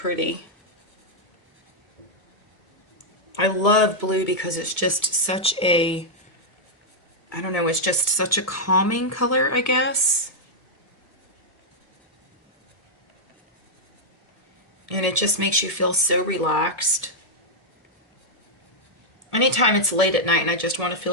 I love blue because it's just such a, I don't know, it's just such a calming color, I guess. And it just makes you feel so relaxed. Anytime it's late at night and I just want to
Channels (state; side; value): normal; both; correlation -0.05